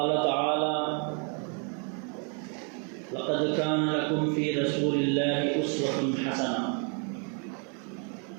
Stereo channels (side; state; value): left; quieter; 37.9 dB